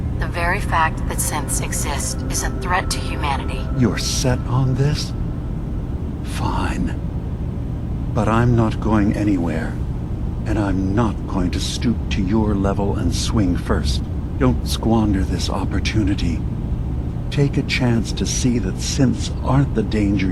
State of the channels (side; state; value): both; identical; correlation 1.00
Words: The very fact that synths exist is a threat to humanity. You're set on this? Fine. But I'm not going anywhere. And I'm not going to stoop to your level and swing first. Don't squander this opportunity. Take a chance to see that synths aren't the danger